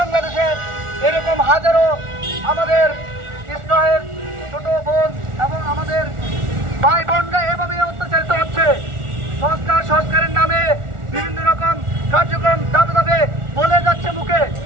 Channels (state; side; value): late; left; 1.4 ms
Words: এরকম হাজারো আমাদের ইসরায়েল ছোট বোন এবং আমাদের ভাই বোনরা এভাবে অত্যাচারিত হচ্ছে। সংস্কারের নামে বিভিন্ন রকম কার্যক্রম ধাপে ধাপে বলে যাচ্ছে মুখে।